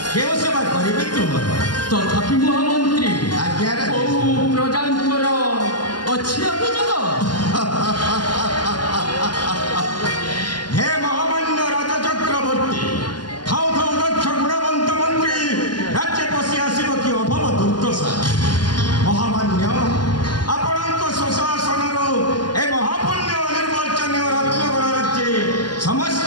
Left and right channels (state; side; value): late; right; 0.71 ms